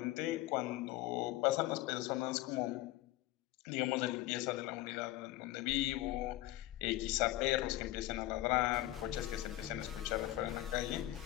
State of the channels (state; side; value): quieter; right; 16.6 dB